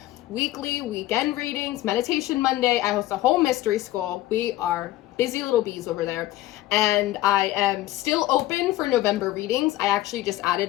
weekly, weekend readings, Meditation Monday. I host a whole mystery school. We are busy little bees over there. And I am still open for November readings. I actually just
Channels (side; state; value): right; quieter; 15.9 dB